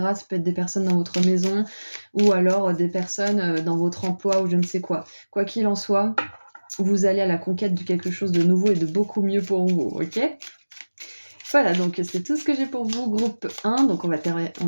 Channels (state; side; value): inverted; both; correlation -1.00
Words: Ça peut être des personnes dans votre maison ou alors des personnes dans votre emploi ou je ne sais quoi. Quoi qu'il en soit, vous allez à la conquête de quelque chose de nouveau et de beaucoup mieux pour vous, ok ? Voilà, donc c'est tout ce que j'ai pour vous, groupe 1. Donc on va